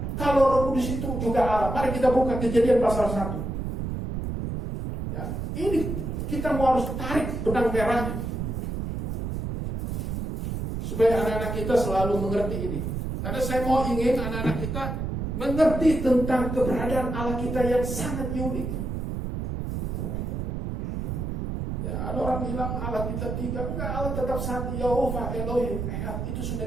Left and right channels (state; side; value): noise; right; rumble, 3 dB below the sound